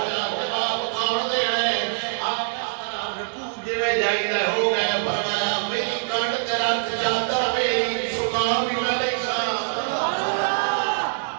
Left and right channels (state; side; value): silent; left; digital silence